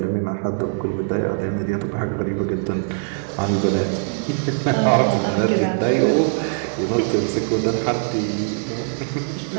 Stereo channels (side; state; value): left; silent; digital silence